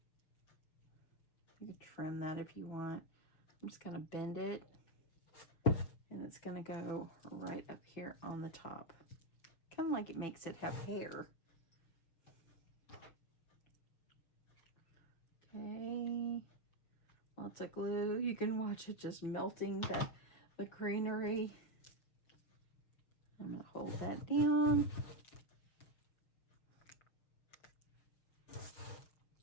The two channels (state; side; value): late; right; 6.5 ms